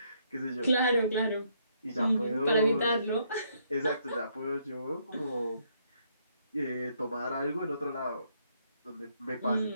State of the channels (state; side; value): inverted; both; correlation -0.72